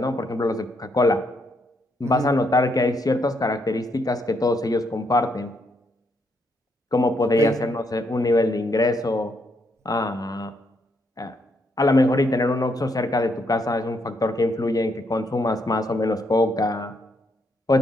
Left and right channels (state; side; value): normal; both; correlation 0.75